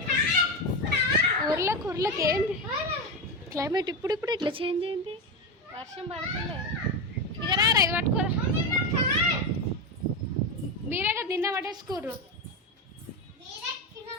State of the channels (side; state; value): both; normal; correlation 0.14